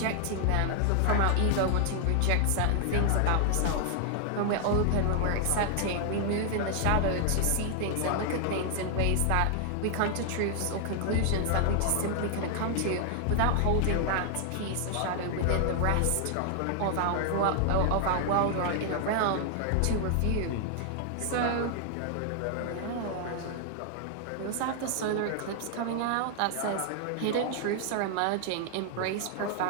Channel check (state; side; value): different; both; correlation 0.00